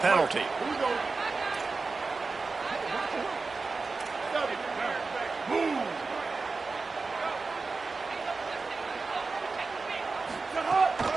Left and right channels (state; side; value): quieter; left; 4.1 dB